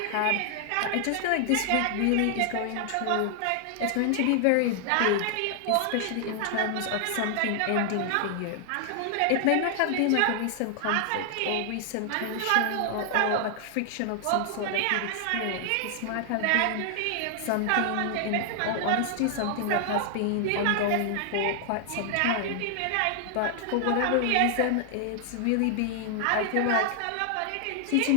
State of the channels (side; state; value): both; different; correlation 0.00